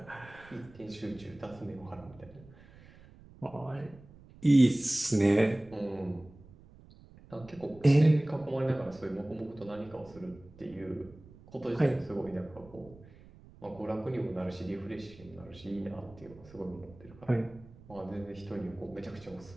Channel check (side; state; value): right; noise; rumble, 22 dB below the sound